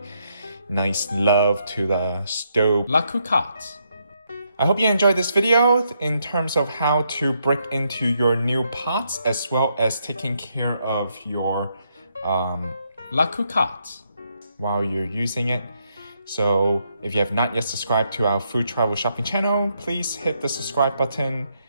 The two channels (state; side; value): inverted; both; correlation -0.77